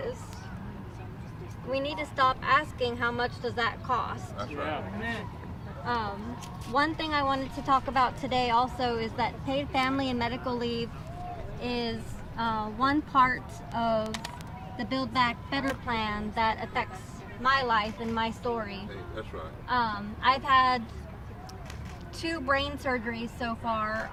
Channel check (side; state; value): both; identical; correlation 1.00